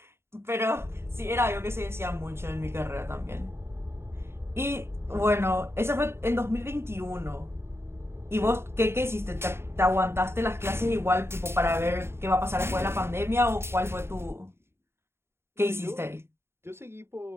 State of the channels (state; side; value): late; left; 0.12 ms